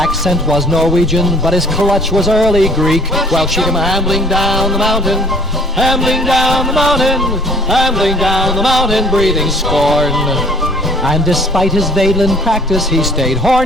was Norwegian, but his clutch was early Greek. Well, she came ambling down the mountain, ambling down the mountain, ambling down the mountain, breathing scorn. And despite his Vaidlin practice, he stayed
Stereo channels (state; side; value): normal; both; correlation 0.55